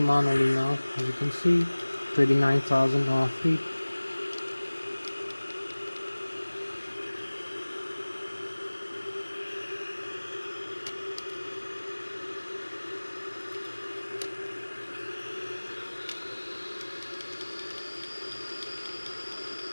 manually now, as you can see, 29,000 feet.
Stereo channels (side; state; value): both; inverted; correlation -1.00